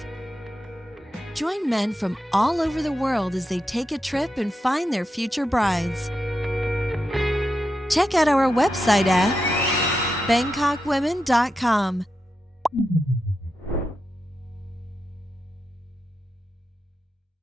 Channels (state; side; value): normal; both; correlation 0.87